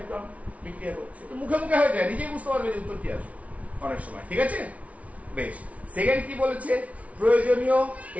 গ্রাম বিক্রিয়া করছে। তো মুখে মুখে হয়ে যায়, নিজেই বুঝতে পারবে যে উত্তর কি আসবে অনেক সময়। ঠিক আছে, বেশ। সেকেন্ড কি বলেছে? প্রয়োজনীয়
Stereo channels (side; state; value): left; late; 0.067 ms